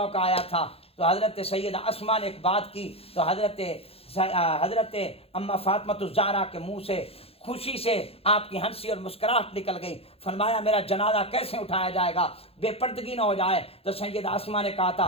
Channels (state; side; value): late; right; 0.28 ms